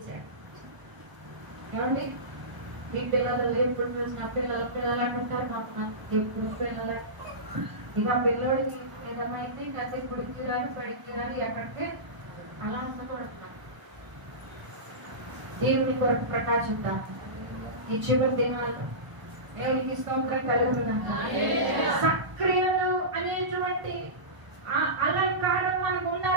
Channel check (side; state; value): left; late; 1.0 ms